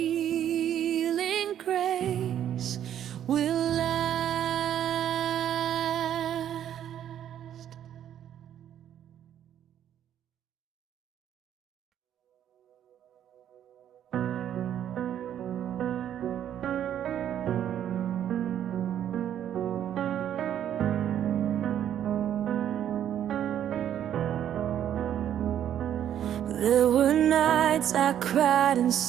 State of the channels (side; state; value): left; quieter; 10.4 dB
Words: grace will last. There were nights I cried in